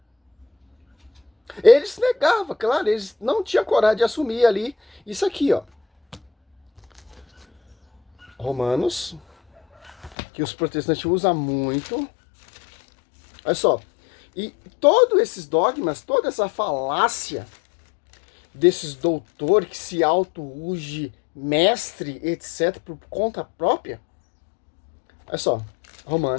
Eles negavam, claro, eles não tinham coragem de assumir ali isso aqui, ó. Romanos, que os protestantes usam muito. Olha só. E todos esses dogmas, toda essa falácia desses doutores que se auto-uge mestre, etc., por conta própria. Olha só.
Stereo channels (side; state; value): right; drops out; at 10.2 s